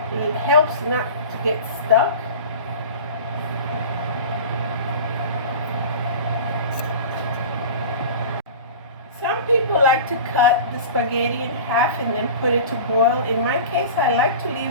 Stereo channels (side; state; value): both; inverted; correlation -0.35